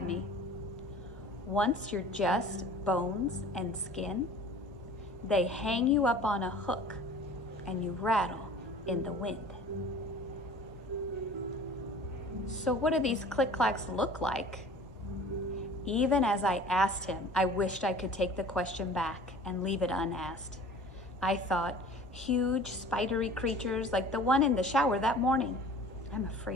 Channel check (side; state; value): both; normal; correlation 0.45